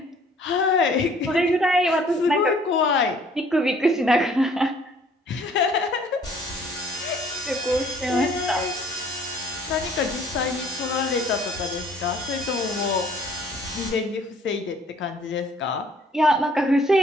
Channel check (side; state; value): both; normal; correlation 0.57